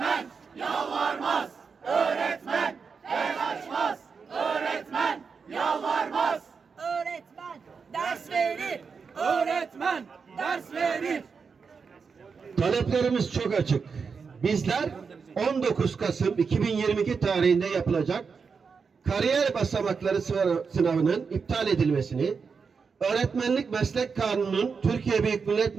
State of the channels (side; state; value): left; quieter; 5.5 dB